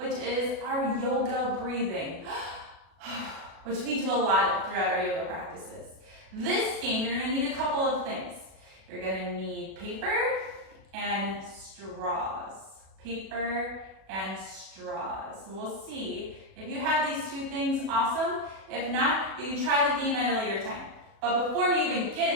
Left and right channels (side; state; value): left; late; 36 ms